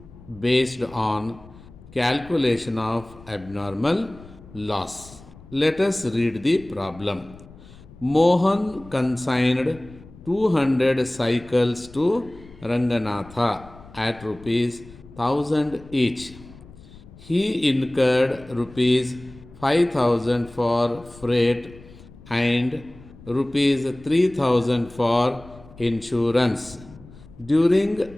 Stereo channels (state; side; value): noise; left; rumble, 21 dB below the sound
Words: based on calculation of abnormal loss. Let us read the problem. Mohan consigned 200 cycles to Ranganatha at rupees 1000 each. He incurred rupees 5000 for freight and rupees 3000 for insurance.